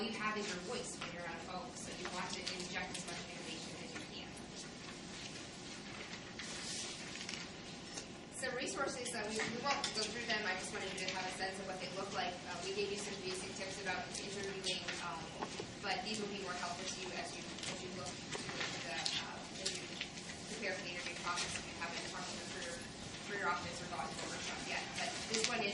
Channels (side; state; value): both; identical; correlation 1.00